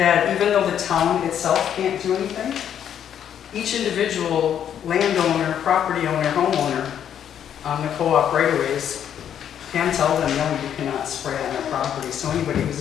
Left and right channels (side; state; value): right; quieter; 9.4 dB